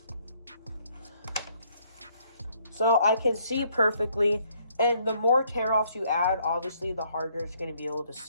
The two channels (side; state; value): both; inverted; correlation -0.67